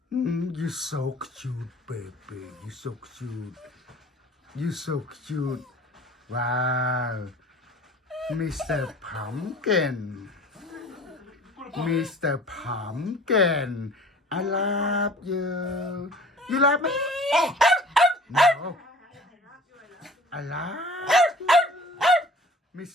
You're so cute, baby. You're so cute. You're so cute. Wow. Mr. Pumpkin. Mr. Pumpkin. I love you. You love me? No. I love you.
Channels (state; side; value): normal; both; correlation 0.46